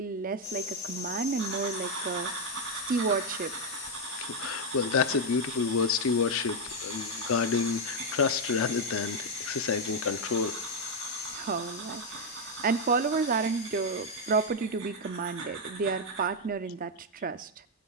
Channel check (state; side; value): normal; both; correlation 0.02